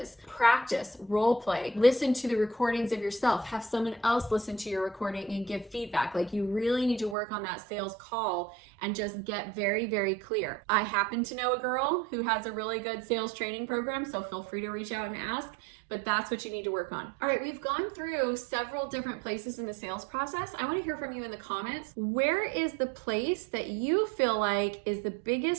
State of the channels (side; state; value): left; drops out; at 7.2 s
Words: practice, role play, listen to the recordings of yourself, have someone else listen to your recording and give feedback. Like you really need to work on that sales call and just get very, very clear. I happen to know a girl who has a really good sales training program, so feel free to reach out and ask. But that's what you need to work on. All right, we've gone through several different places in the sales process. I want to hear from you in the comments. Where is the place that you feel like is the